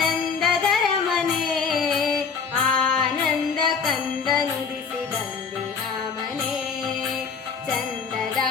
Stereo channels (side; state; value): right; quieter; 5.8 dB